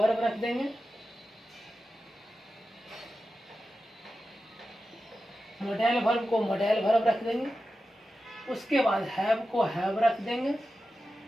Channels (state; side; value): normal; both; correlation 0.92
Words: रख देंगे। मॉडल वर्ब को मॉडल वर्ब रख देंगे। उसके बाद हैव को हैव रख देंगे।